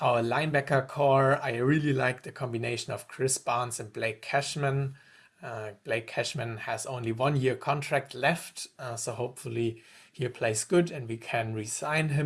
linebacker core, I really like the combination of Chris Barnes and Blake Cashman. Blake Cashman has only 1 year contract left, so hopefully he plays good and we can re-sign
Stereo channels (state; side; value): identical; both; correlation 1.00